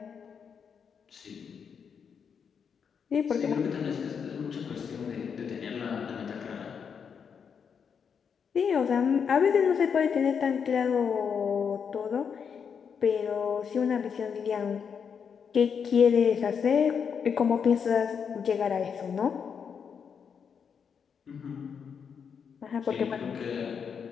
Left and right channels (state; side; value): quieter; right; 6.8 dB